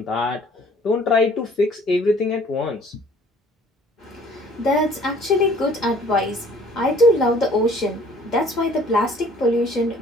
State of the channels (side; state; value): both; normal; correlation 0.55